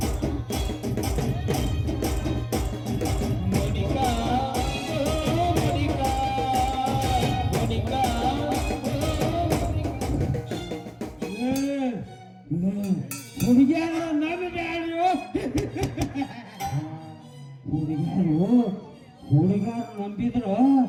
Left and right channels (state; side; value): identical; both; correlation 1.00